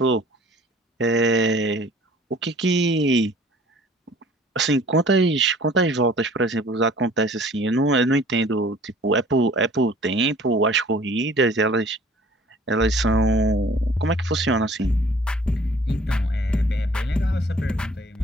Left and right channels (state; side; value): normal; both; correlation 0.51